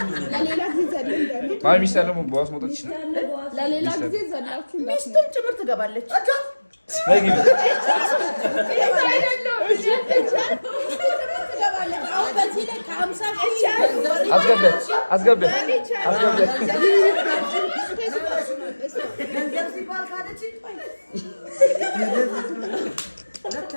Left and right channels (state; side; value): inverted; both; correlation -1.00